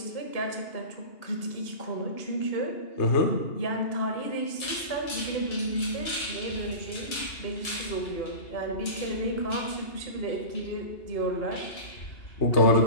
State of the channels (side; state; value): right; late; 2.8 ms